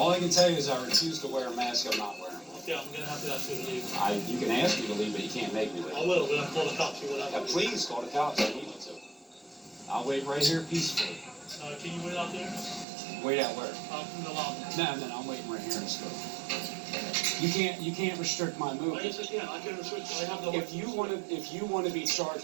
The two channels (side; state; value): left; drops out; at 12.9 s